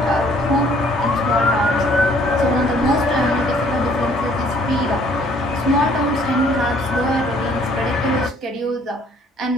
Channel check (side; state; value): both; normal; correlation 0.60